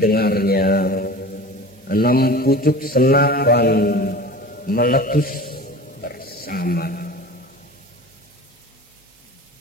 6 pucuk senapan meletus bersama.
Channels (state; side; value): normal; both; correlation 0.37